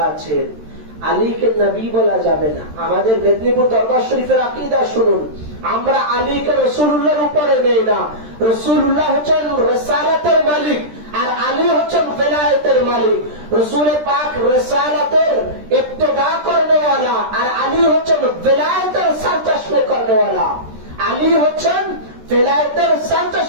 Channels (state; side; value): late; left; 13 ms